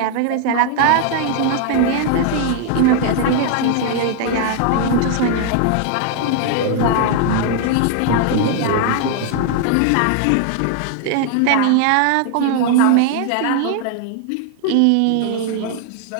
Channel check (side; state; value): both; different; correlation 0.00